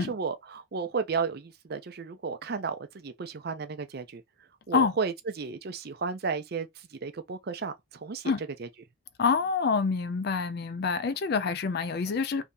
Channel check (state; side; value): normal; both; correlation -0.06